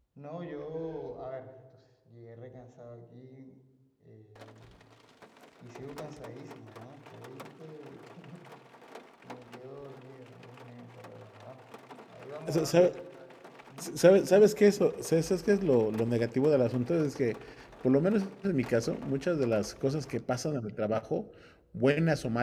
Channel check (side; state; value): both; identical; correlation 1.00